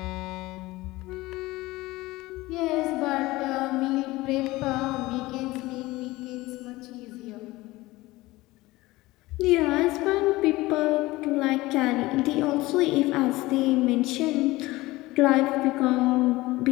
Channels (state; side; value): quieter; right; 19.5 dB